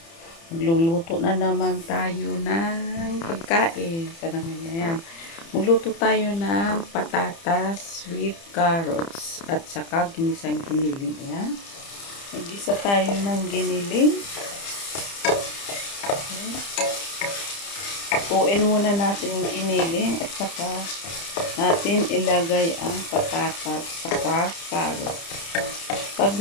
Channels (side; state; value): right; late; 30 ms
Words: Magluluto na naman tayo ng pagkain. Parang yan. Magluto tayo ng patatas with carrots at saka ginisang giniling. Ayan. Mag-isa tayo ng giniling. Tuin muna natin yung giniling at saka natin ilagay ang patatas saka carrots. Pag